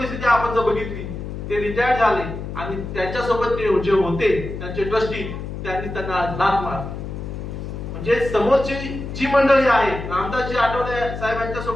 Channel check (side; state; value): left; noise; hum, 7 dB below the sound